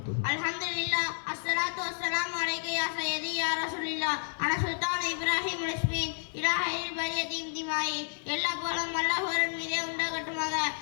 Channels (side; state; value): right; silent; digital silence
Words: அல்ஹம்துலில்லாஹ் அஸ்ஸலாத்து வஸ்ஸலாமு அலைக்க யா சய்யிதி யா ரசூலுல்லாஹ் அன சுல்தான் இப்ராஹிம் இஸ்மி இலா ஹைரில் பரீத் இன்திமாகி. எல்லா புகழும் அல்லாஹ் ஒருவன் மீதே உண்டாகட்டுமாக.